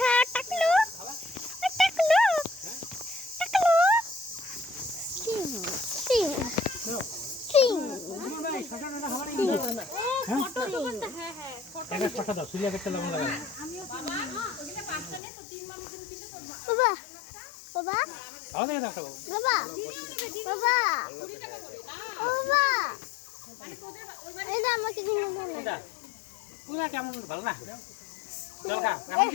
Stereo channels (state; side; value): drops out; right; at 15.2 s